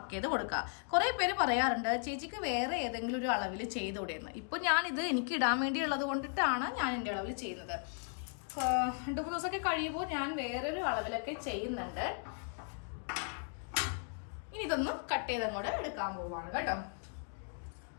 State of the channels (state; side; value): silent; right; 54 dB below the other